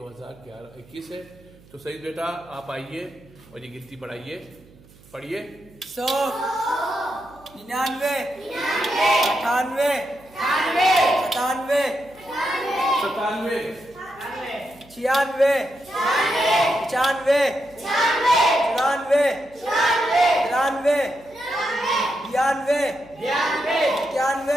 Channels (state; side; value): noise; right; hum, 26 dB below the sound